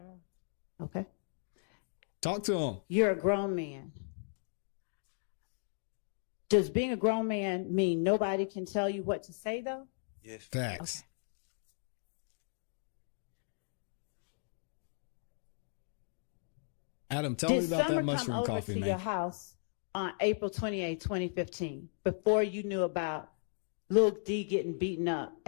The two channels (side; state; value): right; silent; digital silence